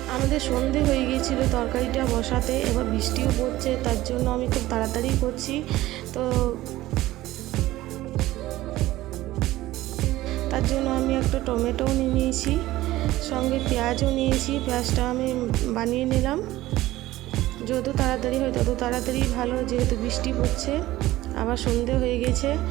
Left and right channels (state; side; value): quieter; left; 16.4 dB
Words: আমাদের সন্ধে হয়ে গিয়েছিল তরকারিটা বসাতে, এবার বৃষ্টিও পড়ছে, তার জন্য আমি খুব তাড়াতাড়ি করছি। তো তার জন্য আমি একটা টমেটোও নিয়ে নিয়েছি, সঙ্গে পেঁয়াজও নিয়েছি। পেঁয়াজটা আমি বানিয়ে নিলাম। যত তাড়াতাড়ি হয় তত তাড়াতাড়ি ভালো, যেহেতু বৃষ্টি পড়ছে, আবার সন্ধে হয়ে গেছে।